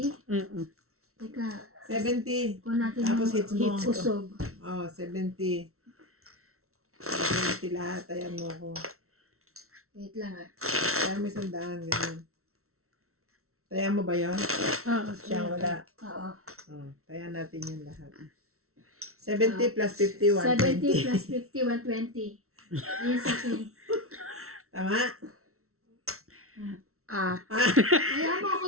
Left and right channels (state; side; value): late; left; 0.63 ms